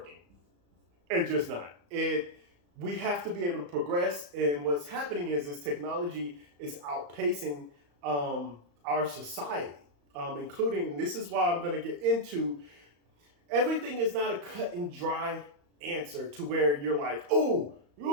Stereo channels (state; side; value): late; left; 35 ms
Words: It's just not. We have to be able to progress, and what's happening is technology is outpacing our society, including, this is why I'm going to get into, everything is not a cut and dry answer to where you're like, oh,